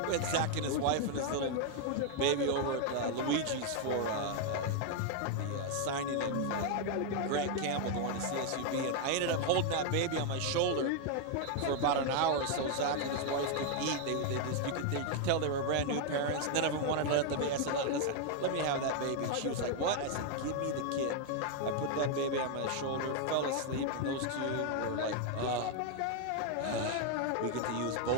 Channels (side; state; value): both; different; correlation 0.00